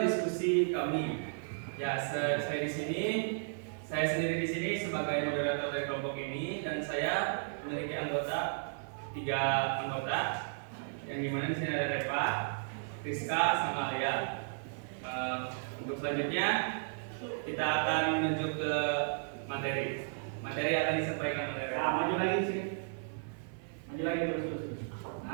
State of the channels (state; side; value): silent; left; digital silence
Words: diskusi kami. Ya, saya sendiri di sini sebagai moderator dari kelompok ini, dan saya memiliki anggota 3 anggota, yang dimana di sini ada Reva, Rizka, sama Alia. Untuk selanjutnya kita akan menuju ke materi. Materi akan disampaikan oleh Reva. Nah, maju lagi sini. Maju lagi terus.